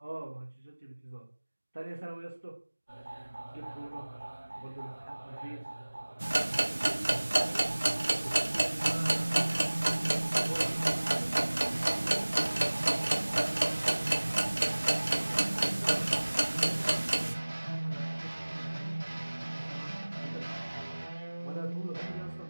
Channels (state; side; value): inverted; both; correlation -1.00